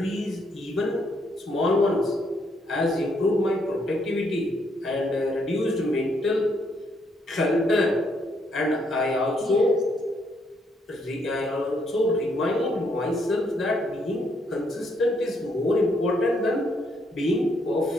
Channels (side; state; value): both; normal; correlation 0.73